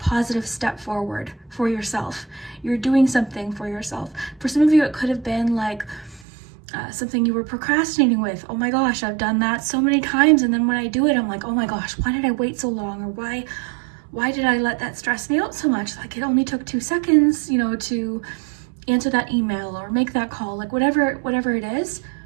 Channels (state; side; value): drops out; left; at 6.2 s